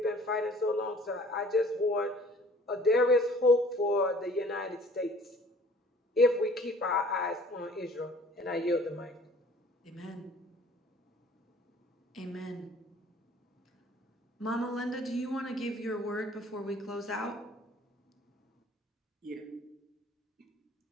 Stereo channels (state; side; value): normal; both; correlation 0.52